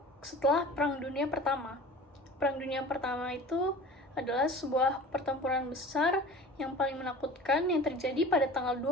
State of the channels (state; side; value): normal; both; correlation 0.40